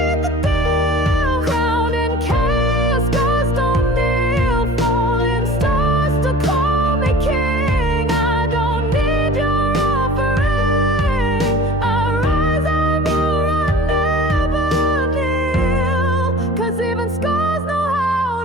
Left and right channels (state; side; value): normal; both; correlation 0.42